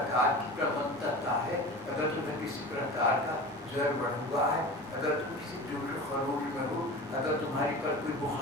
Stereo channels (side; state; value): both; normal; correlation 0.34